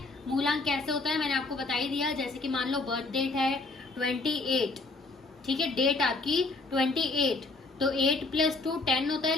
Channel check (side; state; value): right; quieter; 3.5 dB